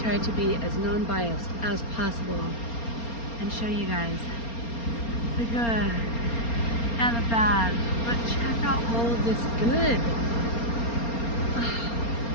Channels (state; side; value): late; right; 4.3 ms